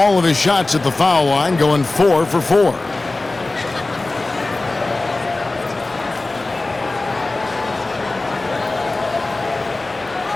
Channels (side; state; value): right; quieter; 3.1 dB